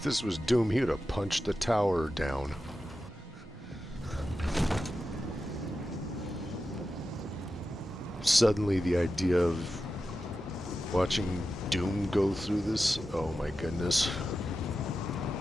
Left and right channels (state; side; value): normal; both; correlation 0.92